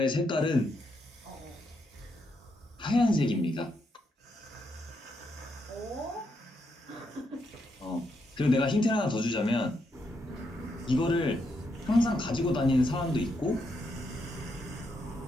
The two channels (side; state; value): both; normal; correlation 0.80